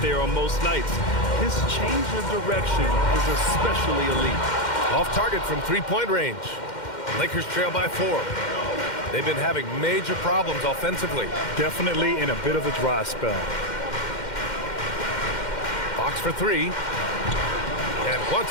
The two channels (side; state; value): right; late; 2.1 ms